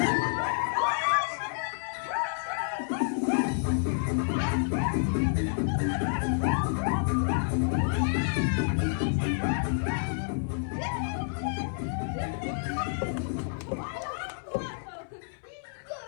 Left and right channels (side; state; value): right; silent; 58 dB below the other